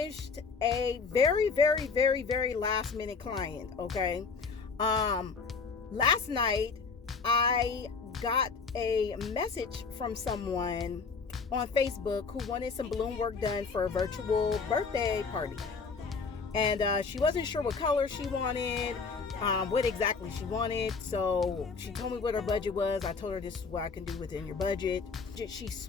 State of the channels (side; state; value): right; quieter; 4.9 dB